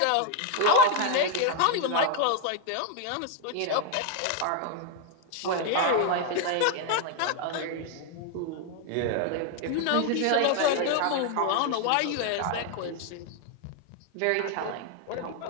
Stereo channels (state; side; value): different; both; correlation 0.01